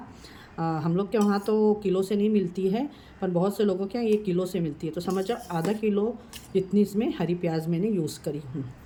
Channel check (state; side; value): identical; both; correlation 1.00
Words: हम लोग के वहाँ तो किलो से नहीं मिलती है, पर बहुत से लोगों के यहाँ ये किलो से मिलती है। तो समझ जाओ आधा किलो जितनी इसमें हरी प्याज मैंने यूज़ करी हूँ,